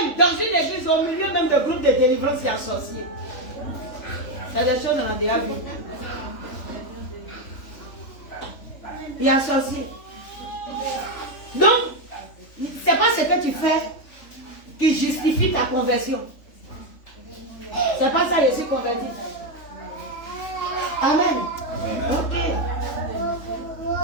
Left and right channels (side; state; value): right; late; 3.4 ms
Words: dans une église, au milieu même de groupes de délivrance, il y a un sorcier. C'est des choses qu'on a déjà vues. Il y a un sorcier. Donc, c'est pas ce que tu fais qui justifie ta conversion. C'est pas ça, je suis converti. Amen. Ok.